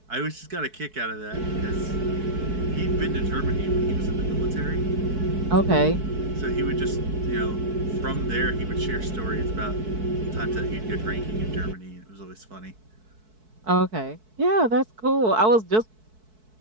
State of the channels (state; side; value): late; left; 4.6 ms